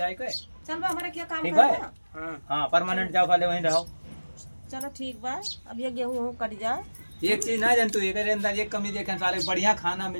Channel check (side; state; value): both; inverted; correlation -1.00